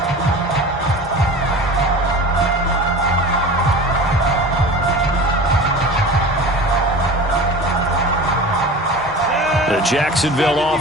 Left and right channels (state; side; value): normal; both; correlation 0.36